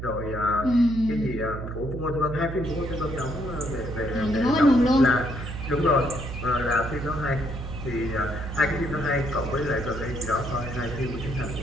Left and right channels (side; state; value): right; noise; hum, 7 dB below the sound